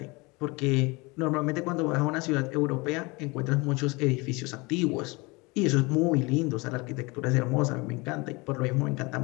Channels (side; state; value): right; quieter; 25.7 dB